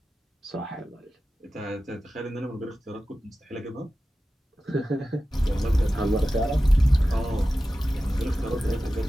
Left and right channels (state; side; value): normal; both; correlation 0.94